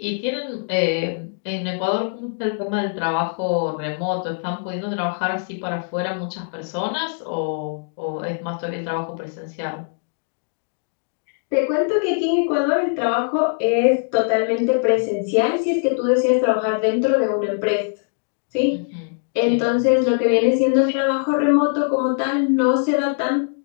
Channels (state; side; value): silent; right; digital silence